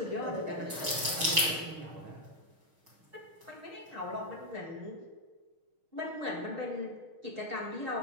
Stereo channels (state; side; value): late; left; 6.4 ms